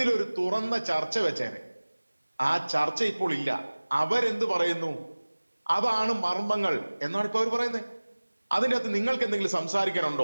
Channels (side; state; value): both; inverted; correlation -1.00